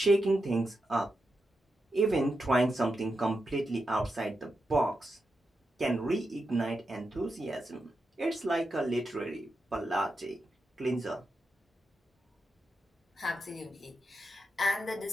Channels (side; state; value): both; normal; correlation 0.87